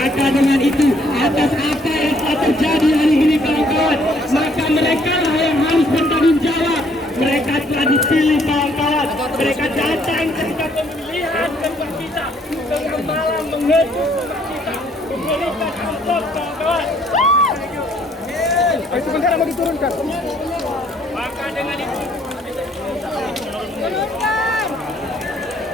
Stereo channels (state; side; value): normal; both; correlation 0.65